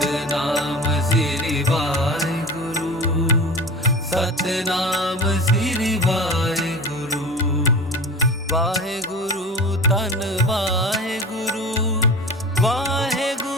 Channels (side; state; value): both; normal; correlation 0.34